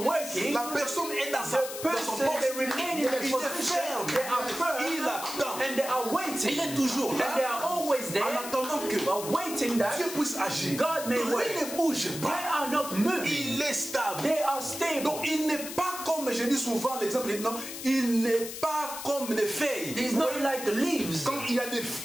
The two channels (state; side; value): noise; left; hiss, 9 dB below the sound